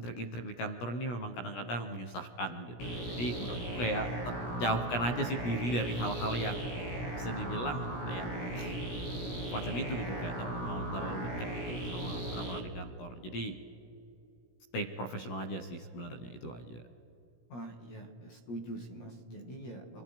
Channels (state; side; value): late; right; 17 ms